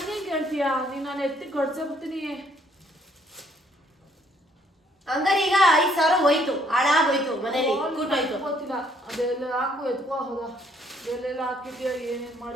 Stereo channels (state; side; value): normal; both; correlation 0.66